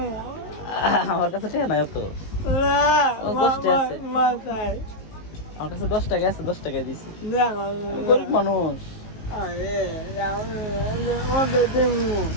আমার কাছে টাকা নাই অত। আমার কাছে 10 টাকা আছে, 10 টাকা দিছি। গরিব মানুষ।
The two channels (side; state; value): right; late; 19 ms